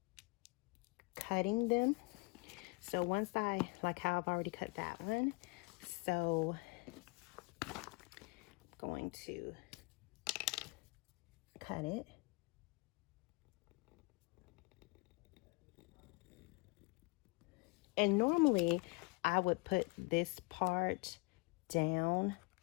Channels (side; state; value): right; quieter; 27.4 dB